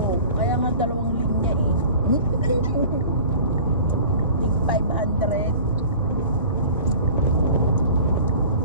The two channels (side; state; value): both; inverted; correlation -0.42